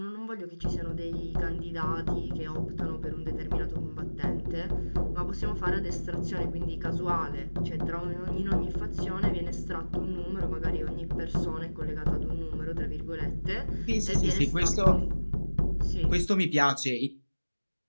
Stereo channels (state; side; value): inverted; both; correlation -1.00